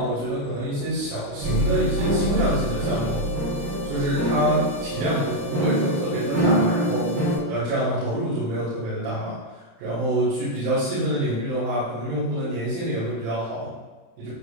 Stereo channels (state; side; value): late; left; 35 ms